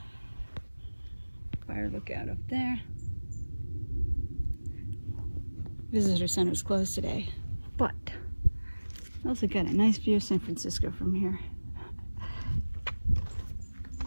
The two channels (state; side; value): inverted; both; correlation -1.00